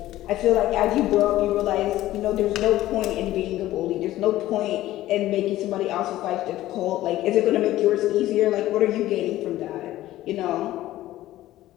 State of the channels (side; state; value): right; quieter; 15.1 dB